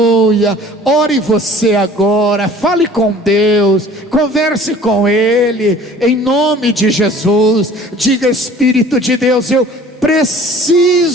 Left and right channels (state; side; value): normal; both; correlation 0.49